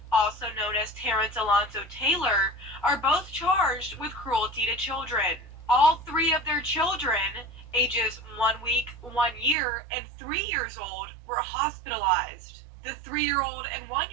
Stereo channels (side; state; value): left; drops out; at 9.6 s